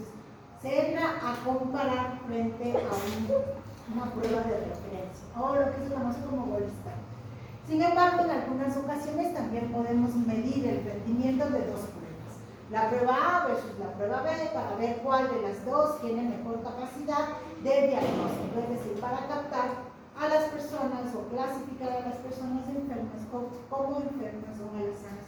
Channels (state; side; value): identical; both; correlation 1.00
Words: se entra a comparar frente a una prueba de referencia, o lo que se conoce como gold standard. Sin embargo, en algunas ocasiones también podemos medir el rendimiento de dos pruebas, la prueba A versus la prueba B, para ver cuál de las dos tiene mejor capacidad de diagnóstico, es decir, para captar a las personas o clasificar a las personas enfermas como enfermas o a las